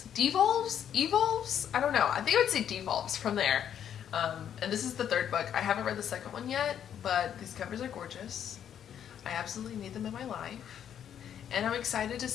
I don't know. I think I would say devolves from there. And this is the 3rd book. I haven't read the 2nd one yet, but these covers are gorgeous. I absolutely need them in my life. And I'm excited to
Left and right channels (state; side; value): quieter; right; 9.3 dB